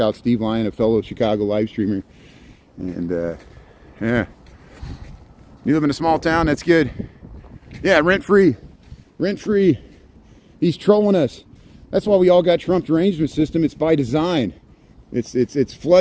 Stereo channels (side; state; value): both; identical; correlation 1.00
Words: out Steve Lyon, a fellow Chicago live streamer. And yeah, you live in a small town, that's good. Yeah, rent free. He's trolling us. That's why we all got Trump derangement system. It's by design. It's